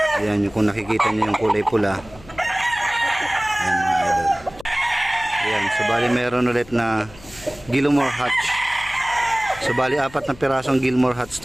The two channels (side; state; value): left; noise; hum, 21 dB below the sound